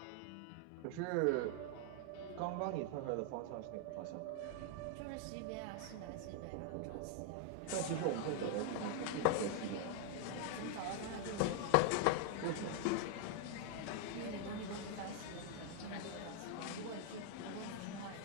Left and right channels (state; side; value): different; both; correlation 0.00